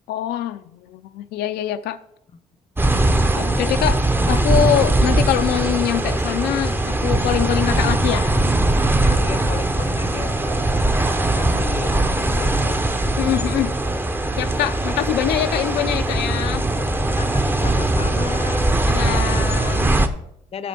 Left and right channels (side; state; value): both; normal; correlation 0.69